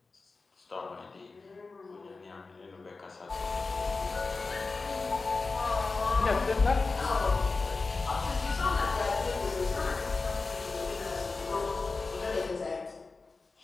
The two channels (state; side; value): quieter; right; 4.0 dB